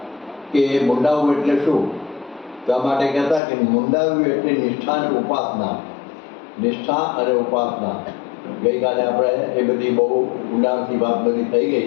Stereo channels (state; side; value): drops out; right; at 3.4 s